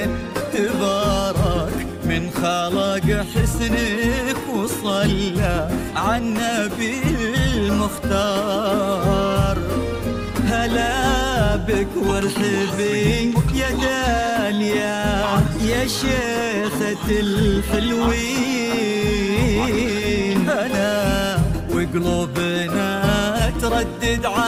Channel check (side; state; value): both; identical; correlation 1.00